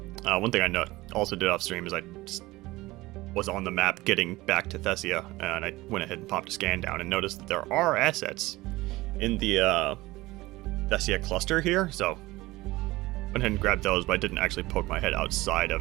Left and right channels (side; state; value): left; quieter; 19.5 dB